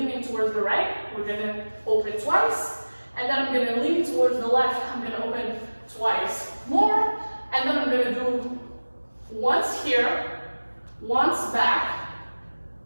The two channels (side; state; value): both; inverted; correlation -1.00